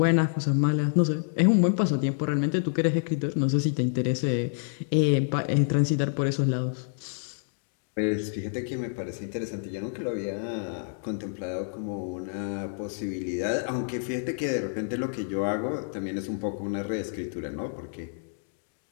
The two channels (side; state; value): right; silent; digital silence